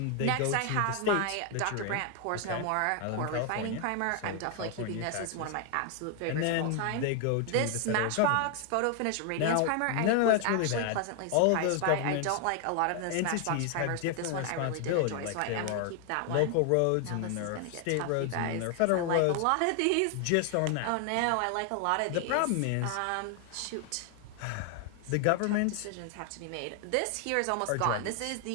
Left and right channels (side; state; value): both; different; correlation 0.00